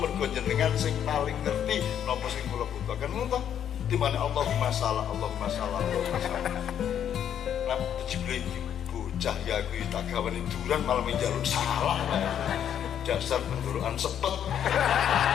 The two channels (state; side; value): quieter; right; 9.4 dB